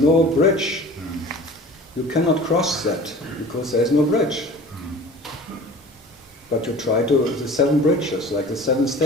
bridge. You cannot cross that, because there is no bridge. But you try to, the 7 bridges, like the 7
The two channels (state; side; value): normal; both; correlation 0.42